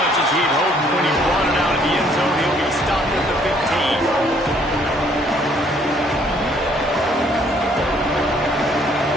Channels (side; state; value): both; normal; correlation 0.63